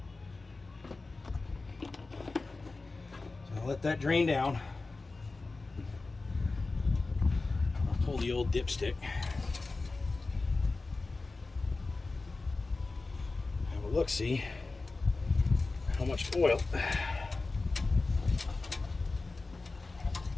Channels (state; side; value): quieter; right; 3.6 dB